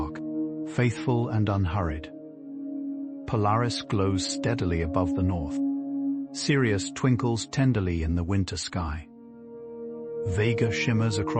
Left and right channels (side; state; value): both; identical; correlation 1.00